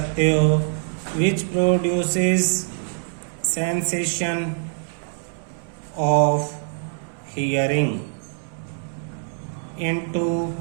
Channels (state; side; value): silent; left; 63 dB below the other